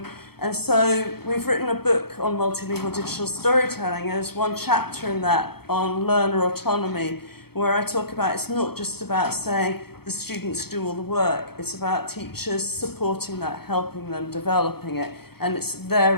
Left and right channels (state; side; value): late; right; 0.96 ms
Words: And so we've written a book on multilingual digital storytelling. There's one chapter in that on learner autonomy, where I talk about it's not just about saying the students do all the work. It's about teachers supporting that, helping them, developing it. And they're